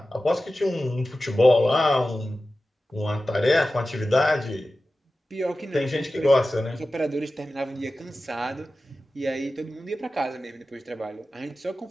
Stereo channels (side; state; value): both; normal; correlation 0.94